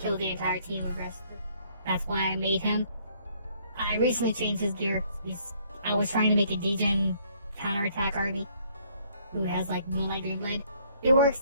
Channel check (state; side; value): inverted; both; correlation -0.64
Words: the entire team with Rescue. That's why I made him. I recently changed his gear. I was trying to make a degen counterattack army who has like Moonlight Dreamblade. It works